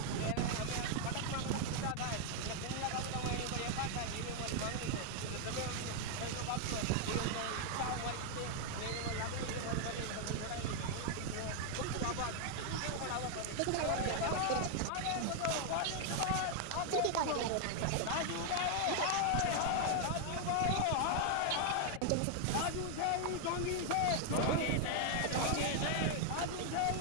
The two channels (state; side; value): different; both; correlation 0.00